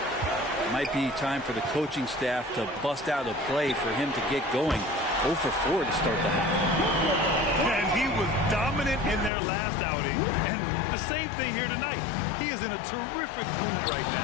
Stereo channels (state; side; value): drops out; right; at 9.3 s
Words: It might be time for the coaching staff to bust out a play for him to get going. 0 for 4 to start the half. And he was dominant in their last outing. And the same thing here tonight. He is in a terrific mood right